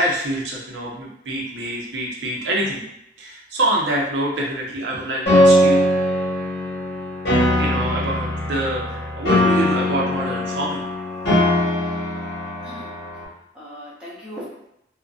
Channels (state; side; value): normal; both; correlation 0.54